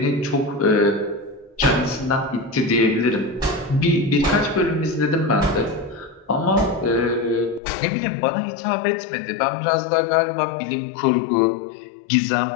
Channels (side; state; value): right; drops out; at 7.6 s